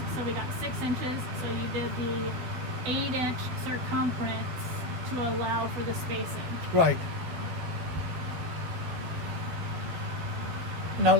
so we got 6 inches. So you did the 8-inch circumference to allow for the spacing. Right. Now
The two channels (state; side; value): late; left; 12 ms